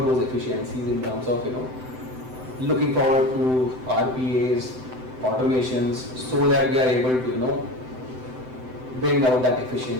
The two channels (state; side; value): late; left; 7.8 ms